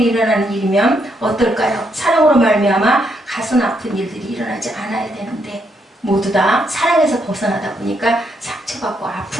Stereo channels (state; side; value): normal; both; correlation 0.76